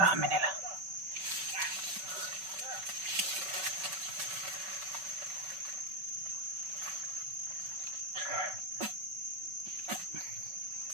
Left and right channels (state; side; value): late; left; 5.3 ms